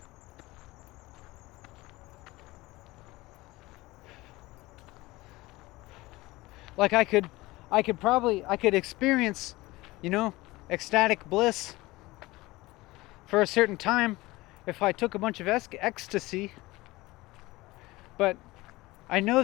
Like I could experience, ecstatic bliss for a certain time if I took a bunch of ecstasy, but I know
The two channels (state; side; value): quieter; right; 20.1 dB